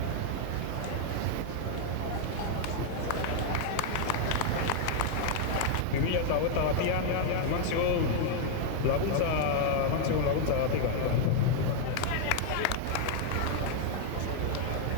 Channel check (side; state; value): both; different; correlation 0.00